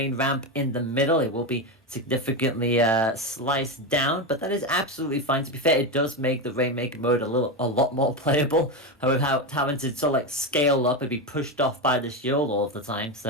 ramp in the middle. It will be significantly sliced down, but that is absolutely fine. To be fair, it does make the Rainmaker mode a lot more playable. However, having to sort of like scale up and be pushed off by the shield all of the time.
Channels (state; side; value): normal; both; correlation 0.14